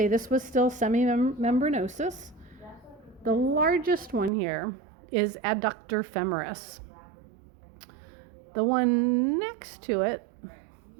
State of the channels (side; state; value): left; drops out; at 4.3 s